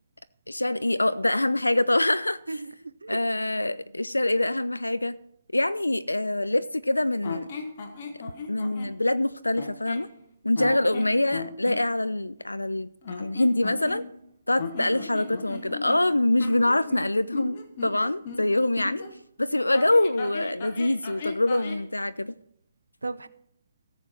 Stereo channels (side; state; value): both; inverted; correlation -0.98